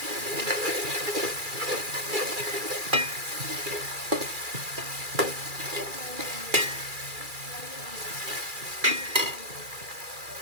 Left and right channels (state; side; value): late; left; 2.4 ms